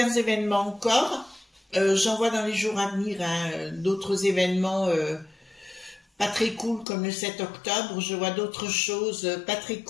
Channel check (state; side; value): drops out; right; at 6.9 s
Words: événements encore. J'en vois dans les jours à venir hein, d'autres événements pas très cool comme le 7 octobre. Je vois d'autres choses pas très